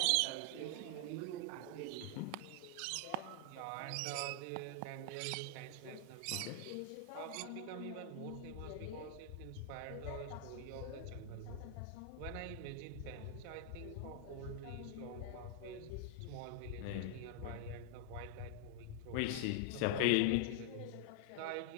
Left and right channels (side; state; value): both; different; correlation 0.00